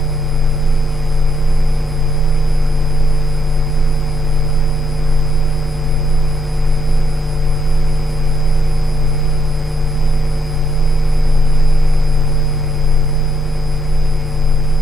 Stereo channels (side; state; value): both; normal; correlation 0.75